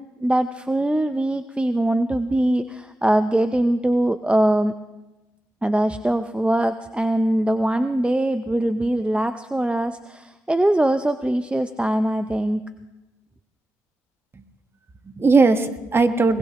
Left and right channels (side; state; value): both; normal; correlation 0.93